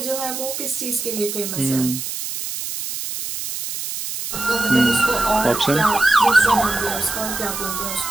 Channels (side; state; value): right; noise; hiss, 6 dB below the sound